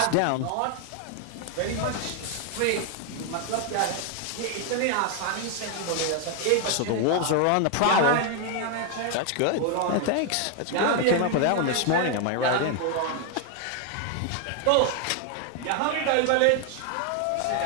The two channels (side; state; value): both; different; correlation 0.00